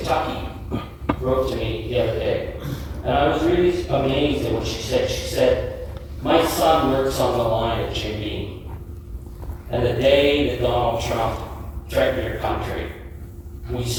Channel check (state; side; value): identical; both; correlation 1.00